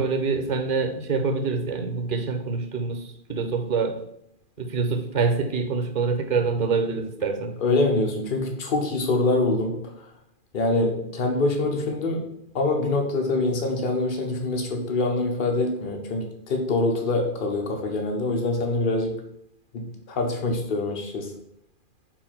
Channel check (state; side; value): late; right; 2.4 ms